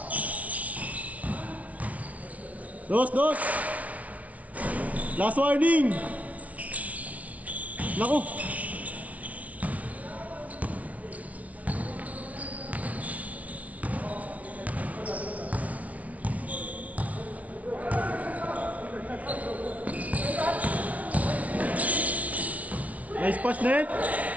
Dos. Last warning. Naku. Nice pass net.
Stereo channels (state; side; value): late; left; 0.068 ms